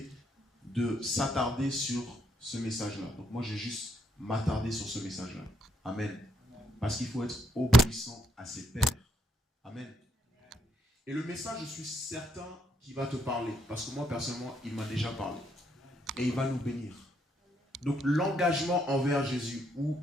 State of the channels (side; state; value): both; normal; correlation 0.73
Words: de s'attarder sur ce message-là. Donc moi, j'ai juste m'attarder sur ce message-là. Amen. Parce qu'il faut être obéissant à ses pairs. Amen. Et le message, je suis certain qu'il va te parler. Parce que moi, personnellement, il m'a déjà parlé. Et il va nous bénir. Donc, l'engagement envers Jésus. Ou